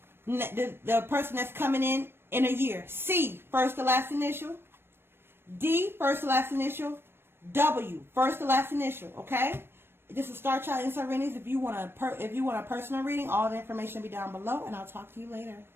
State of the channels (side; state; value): left; late; 0.11 ms